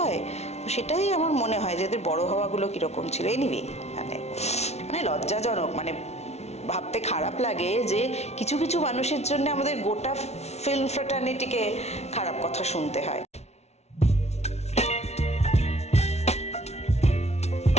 সেটাই আমার মনে হয় যে এদের বড় হওয়াগুলো কীরকম ছিল। এনিওয়ে, মানে লজ্জাজনক, মানে ভাবতে খারাপ লাগে যে কিছু কিছু মানুষের জন্য আমাদের গোটা ফিল্ম ফ্র্যাটার্নিটিকে খারাপ কথা শুনতে হয়।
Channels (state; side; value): late; right; 0.31 ms